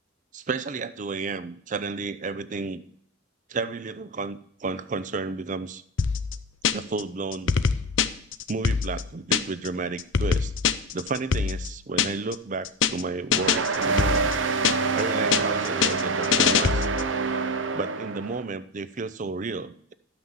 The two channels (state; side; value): normal; both; correlation 0.17